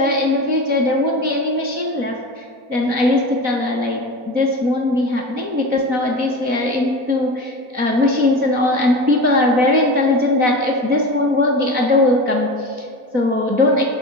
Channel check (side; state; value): left; late; 4.0 ms